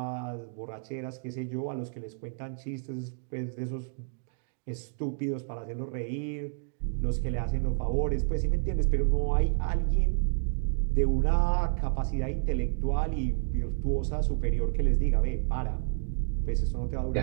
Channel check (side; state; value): left; silent; digital silence